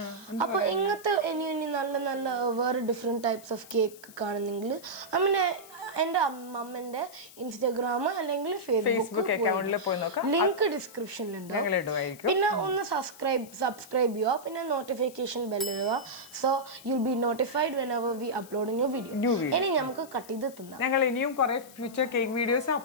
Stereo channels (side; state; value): left; noise; hiss, 20 dB below the sound